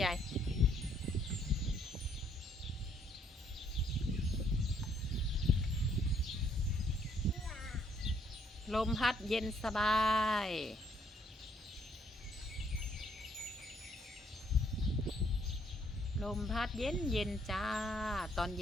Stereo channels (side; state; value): both; normal; correlation 0.68